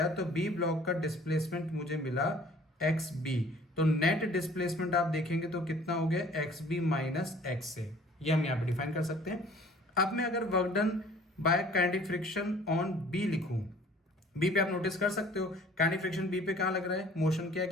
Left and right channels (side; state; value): both; normal; correlation 0.52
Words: तो बी ब्लॉक का डिस्प्लेसमेंट मुझे मिला एक्स बी। तो नेट डिस्प्लेसमेंट आप देखेंगे तो कितना हो गया, एक्स बी माइनस एक्स ए। ये हम यहां पे डिफाइन कर सकते हैं। अब मैं अगर work done by kinetic friction on B लिखूं, बी पे आप नोटिस कर सकते हो काइनेटिक फ्रिक्शन बी पे कहां लग रहा है, मोशन के